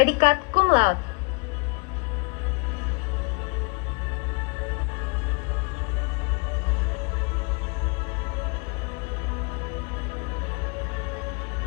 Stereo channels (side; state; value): right; quieter; 31.5 dB